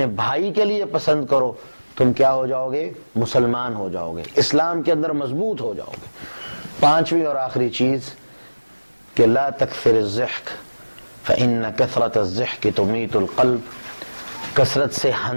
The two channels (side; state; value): both; inverted; correlation -1.00